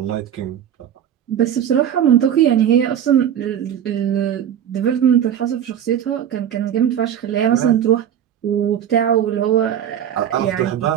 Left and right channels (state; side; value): quieter; left; 9.7 dB